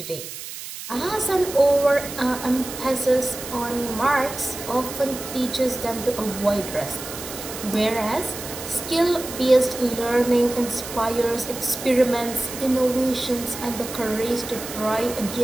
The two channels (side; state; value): right; noise; hiss, 10 dB below the sound